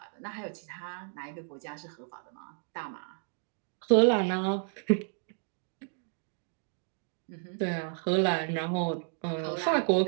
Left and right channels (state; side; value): silent; left; 56 dB below the other